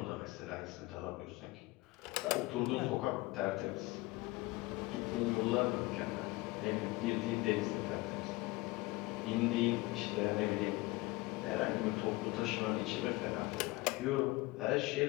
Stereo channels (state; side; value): quieter; right; 21.4 dB